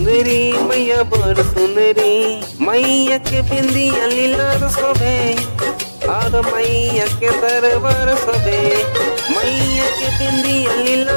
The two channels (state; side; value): inverted; both; correlation -1.00